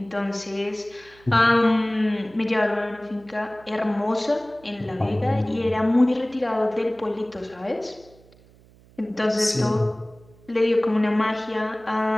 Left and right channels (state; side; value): noise; right; hum, 27 dB below the sound